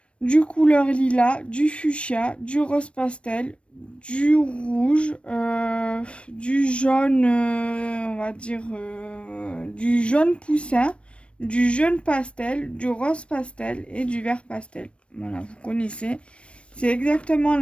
du couleur lilas, du fuchsia, du rose pastel, du rouge, du jaune, on va dire, du jaune poussin, du jaune pastel, du rose pastel et du vert pastel. Voilà, vous connaissez. C'est exactement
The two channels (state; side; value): late; right; 0.060 ms